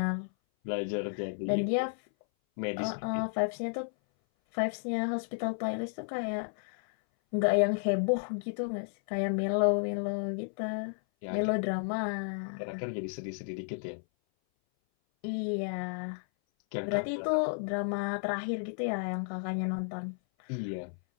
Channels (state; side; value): silent; right; 56 dB below the other